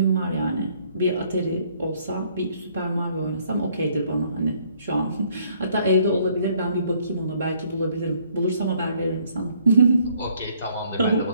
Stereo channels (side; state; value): both; inverted; correlation -0.64